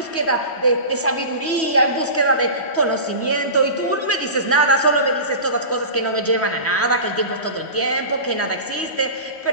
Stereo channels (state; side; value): late; right; 3.1 ms